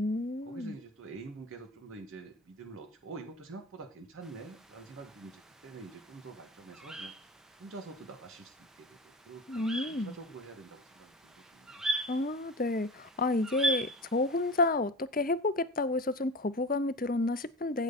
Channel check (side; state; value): both; normal; correlation 0.31